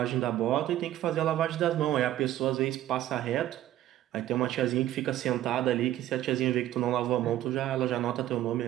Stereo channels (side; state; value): left; quieter; 13.4 dB